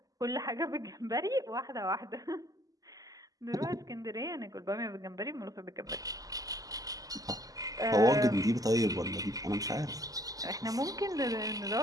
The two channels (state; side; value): late; left; 0.17 ms